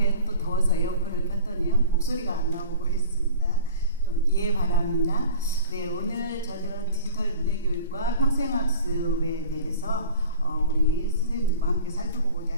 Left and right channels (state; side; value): inverted; both; correlation -0.41